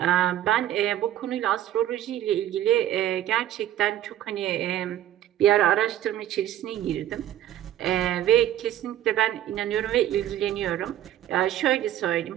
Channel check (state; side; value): quieter; left; 12.2 dB